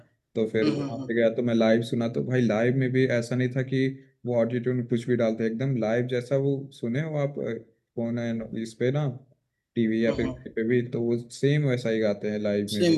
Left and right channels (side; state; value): both; identical; correlation 1.00